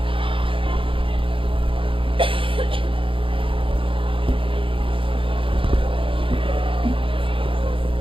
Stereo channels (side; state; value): left; late; 0.25 ms